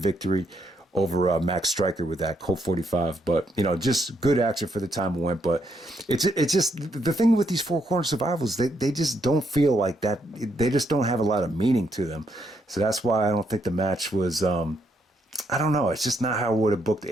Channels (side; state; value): both; normal; correlation 0.76